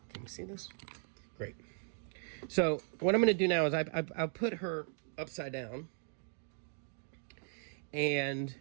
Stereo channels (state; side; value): silent; left; 53 dB below the other